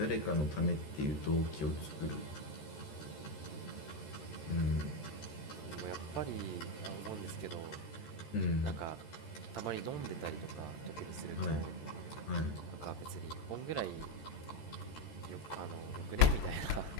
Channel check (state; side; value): late; right; 13 ms